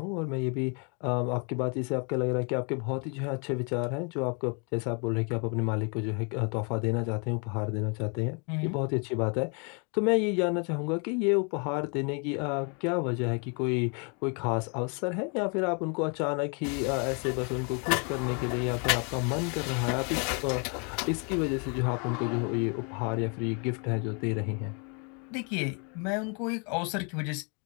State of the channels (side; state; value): right; quieter; 36.3 dB